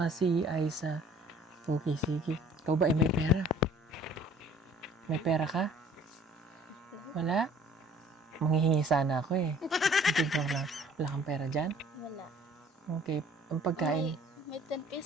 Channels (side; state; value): both; normal; correlation 0.53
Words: si Aisa. Okay, sige. Ikaw ba ay may pera? May pera ka? Wala? Manghihingi sana ako eh. Hindi ko lang. Wala kang pera dyan? Wala. Okay. Ang pagkain. May 10